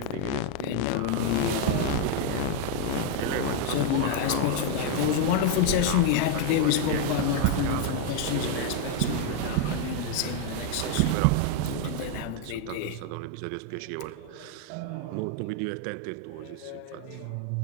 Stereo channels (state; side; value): different; both; correlation 0.01